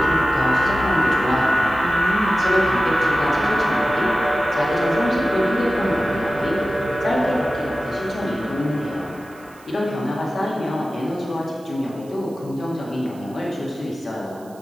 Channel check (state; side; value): noise; right; hiss, 27 dB below the sound